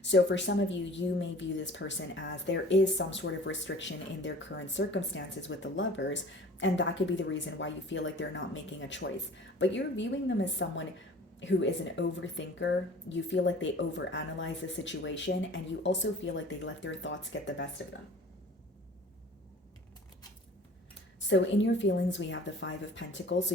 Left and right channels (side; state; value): both; normal; correlation 0.45